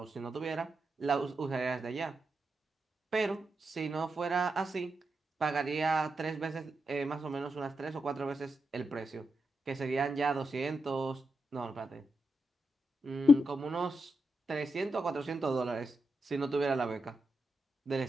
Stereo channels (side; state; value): both; normal; correlation 0.86